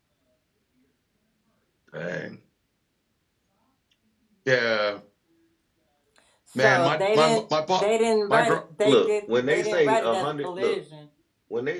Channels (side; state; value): both; identical; correlation 1.00